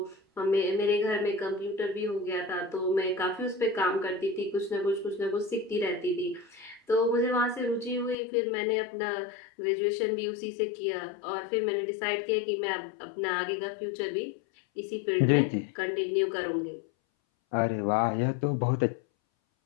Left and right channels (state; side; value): drops out; right; at 8.2 s